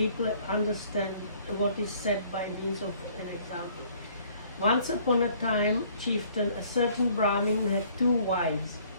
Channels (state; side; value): inverted; both; correlation -0.58